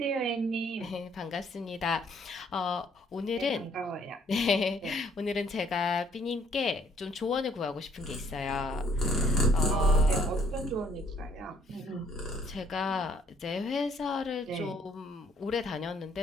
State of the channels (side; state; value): both; normal; correlation 0.63